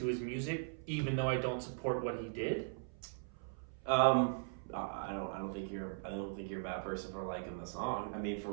his music, even though I don't support what he did? I don't think you're a bad person for liking the song. I mean,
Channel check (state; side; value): silent; left; 52 dB below the other